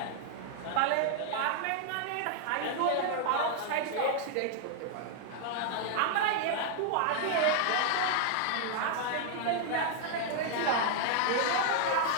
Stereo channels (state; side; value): different; both; correlation -0.01